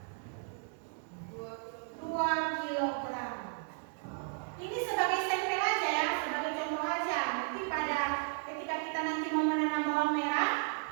2 kilogram. Ini sebagai sampel aja ya, sebagai contoh aja. Nanti pada ketika kita nanti mau menanam bawang merah,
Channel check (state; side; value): silent; left; 55 dB below the other